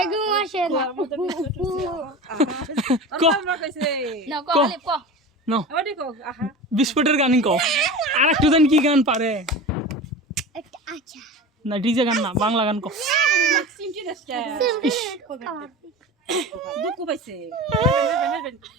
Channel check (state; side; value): normal; both; correlation 0.31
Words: আসে না আমাদের 20 ফুট উঠছে আহা আর বড় কইছে না কলে ক নাও ওডি কও আহা বিস্ফোটের গানই কও আর একটু জানি কি গান পারে আচ্ছা না ডিজে গান না বাংলা গান কও সিমটি দেশটা দুঃখ পাইছে